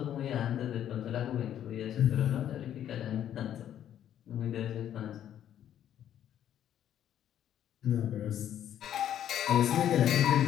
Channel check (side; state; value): right; quieter; 10.6 dB